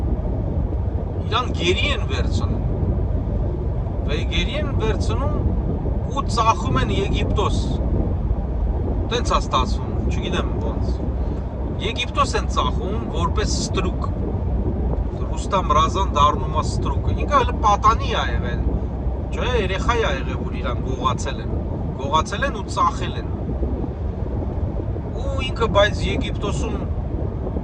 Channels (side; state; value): both; identical; correlation 1.00